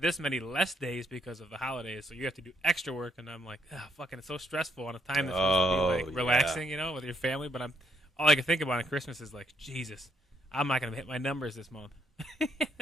many less days because of the holidays, so you have to do extra work, and I'm like, fucking, it's so stressful on a time that's supposed to be like relaxing, with your family. But all I can think about on Christmas is like, Jesus, I'm not going to hit my numbers this month.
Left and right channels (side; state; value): both; normal; correlation 0.72